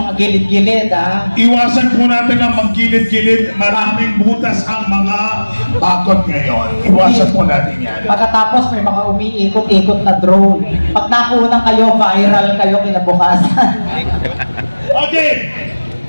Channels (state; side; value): inverted; both; correlation -1.00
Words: gilid-gilid, Iwasan po natin ang maggilid-gilid. Maraming butas ang mga bakod ngayon. Iwasan po natin yan. Pagkatapos may mga umiikot-ikot na drone. Pag nakunan kayo, viral kayo kinabukasan. Okay.